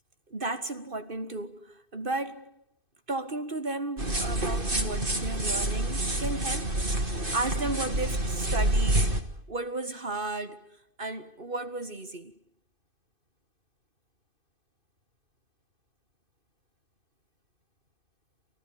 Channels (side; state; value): left; late; 2.5 ms